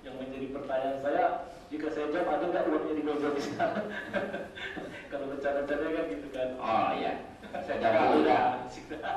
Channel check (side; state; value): both; identical; correlation 1.00